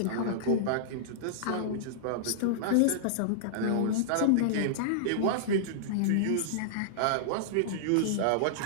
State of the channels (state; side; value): different; both; correlation -0.02